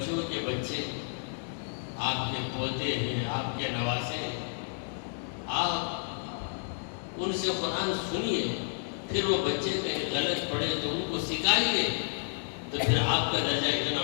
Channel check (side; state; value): right; silent; 57 dB below the other